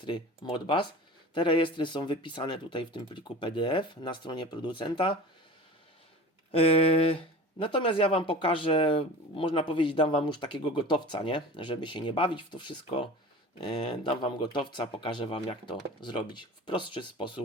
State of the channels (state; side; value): normal; both; correlation 0.37